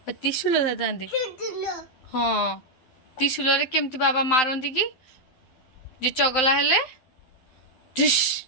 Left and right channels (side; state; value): right; late; 12 ms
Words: त्रिशूल धर थांती हाँ त्रिशूल रे केमती बाबा मारंती कि जे चगला हेले ढिश